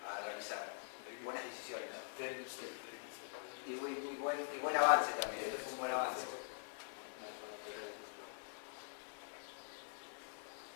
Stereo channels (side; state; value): right; silent; digital silence